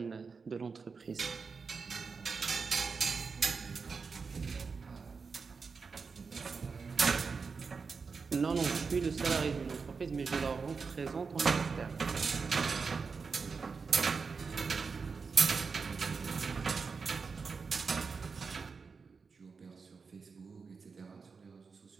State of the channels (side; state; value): left; quieter; 5.0 dB